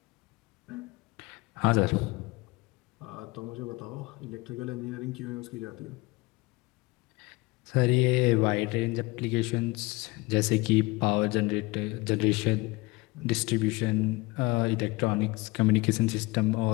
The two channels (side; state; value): right; quieter; 23.1 dB